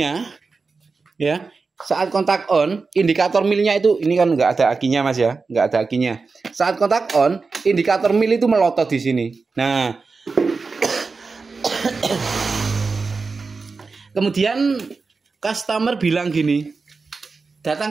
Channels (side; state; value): left; quieter; 4.4 dB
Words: ya, saat kontak on, indikator milnya itu, ini kan nggak ada akinya Mas ya, nggak ada akinya. Saat kontak on, indikator mil itu melotot di sini. Nah, kemudian customer bilang gini, datang